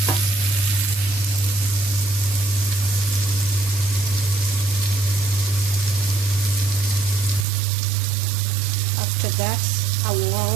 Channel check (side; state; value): left; drops out; at 7.5 s